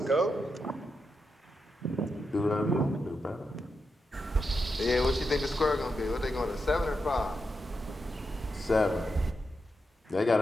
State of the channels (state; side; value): normal; both; correlation 0.86